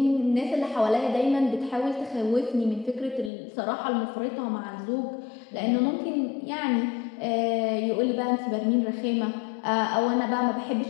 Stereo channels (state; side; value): drops out; right; at 3.3 s